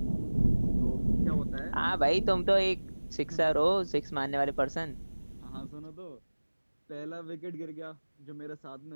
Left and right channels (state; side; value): inverted; both; correlation -1.00